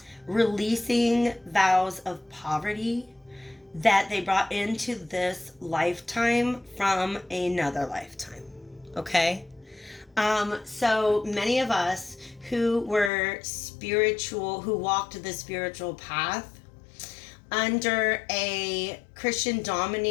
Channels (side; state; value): right; drops out; at 13.1 s